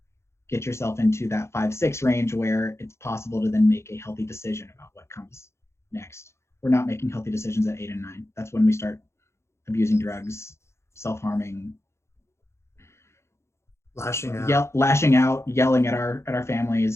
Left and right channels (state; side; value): late; right; 0.13 ms